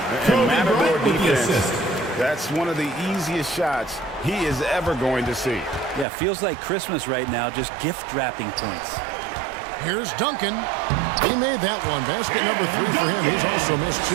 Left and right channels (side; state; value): left; drops out; at 6.1 s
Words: And Matador Bryant with the defense, assist. that's one of the easiest shots he is ever going to see. Yeah, feels like Christmas right now, just gift wrapping points. Here's Duncan. He made that one. Basket number 3 for him. He's also missed 2.